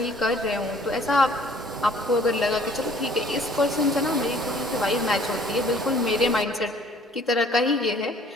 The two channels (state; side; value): normal; both; correlation 0.55